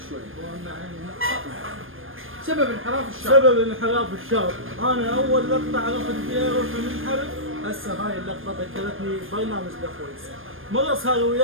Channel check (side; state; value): left; late; 0.59 ms